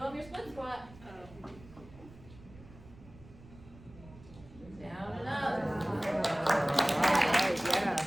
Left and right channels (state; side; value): noise; right; rumble, 20 dB below the sound